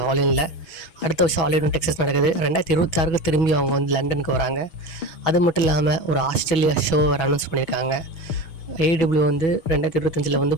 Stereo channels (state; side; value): late; right; 6.1 ms